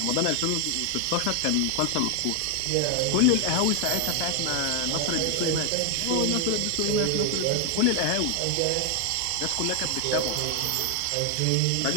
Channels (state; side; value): different; both; correlation 0.00